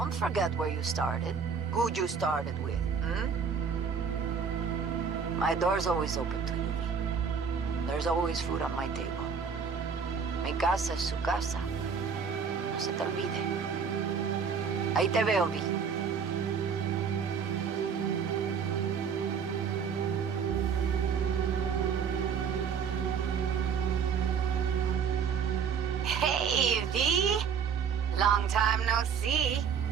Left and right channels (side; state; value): left; quieter; 6.4 dB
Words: forget where you started. Who you started with, My door's always open to you, V. There's always food on my table. Mi casa es su casa. No se te olvide. Ahí te veo, V. Hey, V. Long time no see.